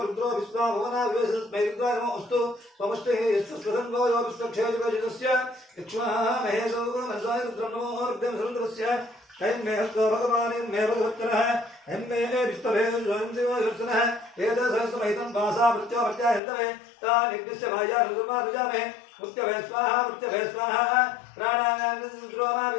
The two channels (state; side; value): drops out; right; at 16.4 s